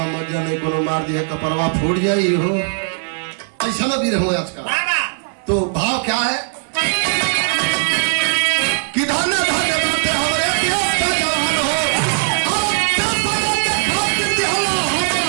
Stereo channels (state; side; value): silent; left; digital silence